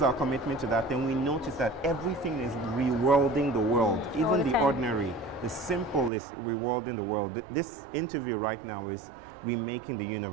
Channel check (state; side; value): drops out; left; at 6.1 s